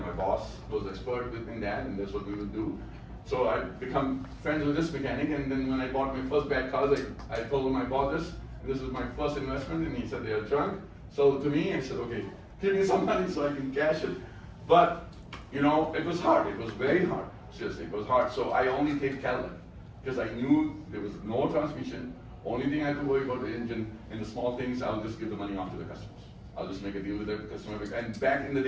boss was expert in that, and that's what we would do. So I become friends with this mechanic, and then when I bought my first bad cars, I told him I bought this. This is my first investment, and he said they are junk. So to me, I said, okay, give me some money so I can cash it. But you know, it was hard. It was very hard. Seriously, it was hard. So I only take Cadillac because I knew there was no transmission. Only thing I had to worry about the engine, and the small things I'll just give the money off to the customers. I'll just make a deal with the customer. And back in the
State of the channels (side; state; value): both; identical; correlation 1.00